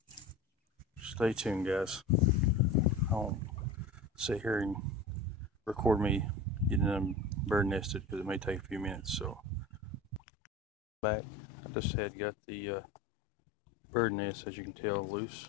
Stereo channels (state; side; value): drops out; right; at 10.2 s